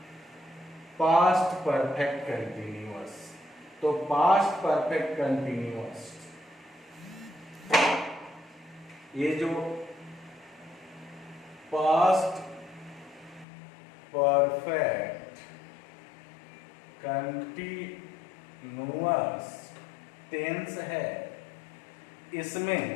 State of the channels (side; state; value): right; drops out; at 13.5 s